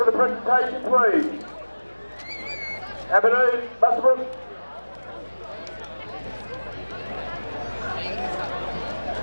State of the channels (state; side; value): inverted; both; correlation -1.00